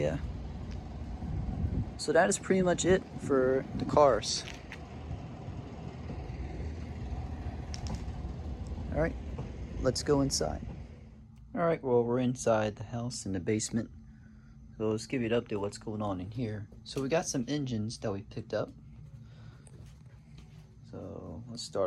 So that is pretty much it for the cars. All right, let's go inside. All right, well, we're inside the house in the basement. So let's give you an update what's going on in here. So we got some engines that we picked up. So let's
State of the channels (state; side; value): identical; both; correlation 1.00